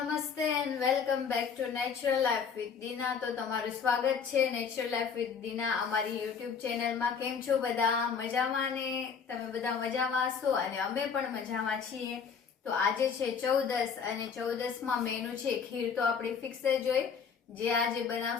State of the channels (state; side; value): quieter; right; 6.3 dB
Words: and welcome back to natural life with Dina. તો તમારું સ્વાગત છે નેચરલ લાઈફ વિથ દીના અમારી યુટ્યુબ ચેનલમાં. કેમ છો બધા? મજામાં ને? તમે બધા મજામાં હશો અને અમે પણ મજામાં છીએ. તો આજે છે 14 અને 14માં મેનુ છે ખીર. તો આપણે ફિક્સ જ હોય જે આજે